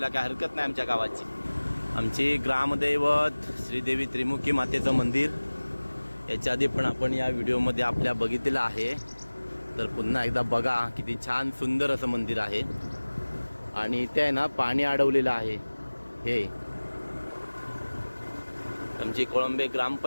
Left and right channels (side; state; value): both; inverted; correlation -1.00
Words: काय हरकत नाही आमच्या गावाची. आमची ग्रामदैवत श्रीदेवी त्रिमुखी मातेचं मंदिर याच्या आधी पण आपण या व्हिडिओमध्ये आपल्या बघितलेलं आहे. तर पुन्हा एकदा बघा, किती छान सुंदर असं मंदिर आहे. आणि इथे आहे ना पाणी अडवलेलं आहे. हे आमची कोळंबे